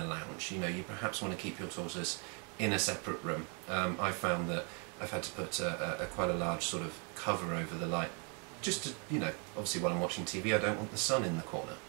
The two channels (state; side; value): quieter; left; 36.4 dB